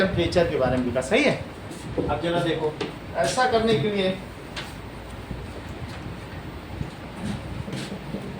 के बारे में लिखा, सही है। अब जरा देखो, ऐसा करने के लिए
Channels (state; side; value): identical; both; correlation 1.00